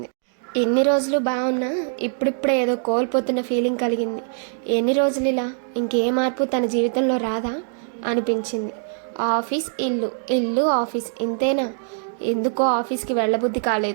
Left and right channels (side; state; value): left; silent; 64 dB below the other